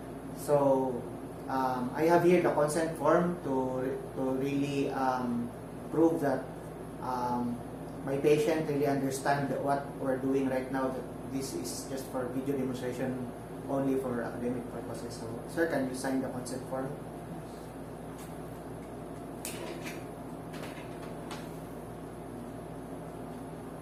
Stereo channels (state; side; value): identical; both; correlation 1.00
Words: So I have here the consent form to really prove that my patient really understand what we're doing right now, that this is just for video demonstration only for academic purposes. So, sir, can you sign the consent form?